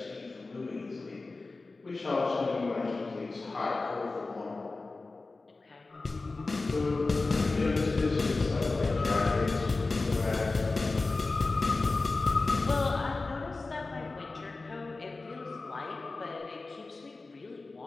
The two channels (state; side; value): quieter; right; 3.6 dB